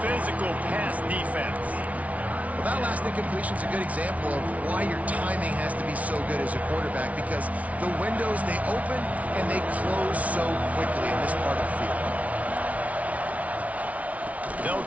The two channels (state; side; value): late; left; 0.068 ms